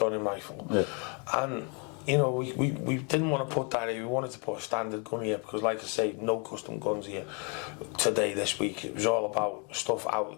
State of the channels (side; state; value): right; quieter; 35.3 dB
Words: rifle, and you know, we didn't want to put that here. We wanted to put a standard gun here because, like I say, no custom guns here today, this week. It was all about stuff